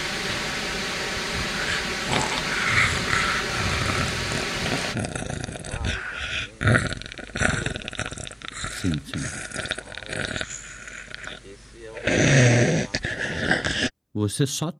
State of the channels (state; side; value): identical; both; correlation 1.00